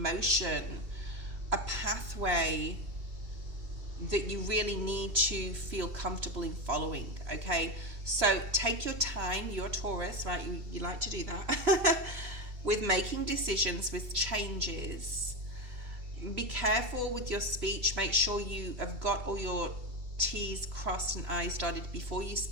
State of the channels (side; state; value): left; late; 2.7 ms